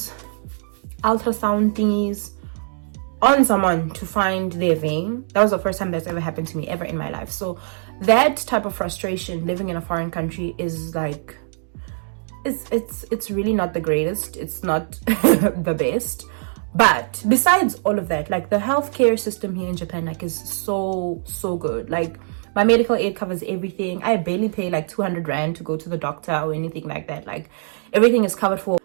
ultrasound thingies on someone to find their vein. That was the first time that's ever happened to me ever in my life. So that type of frustration living in a foreign country is like, it's really not the greatest, it's not the best. But besides all of that, like the healthcare system here in Japan like is so good. Like my medical aid covers everything. I barely pay like 200 rand to go to the doctor or anything like that. Like everything is covered for.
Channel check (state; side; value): silent; left; digital silence